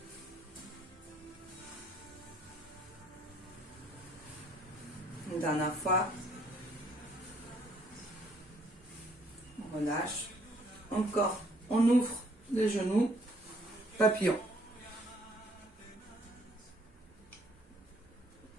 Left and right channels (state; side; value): normal; both; correlation 0.63